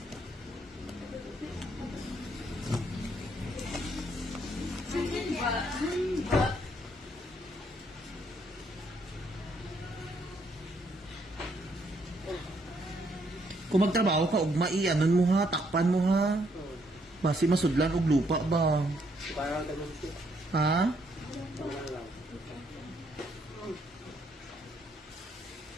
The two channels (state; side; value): normal; both; correlation 0.71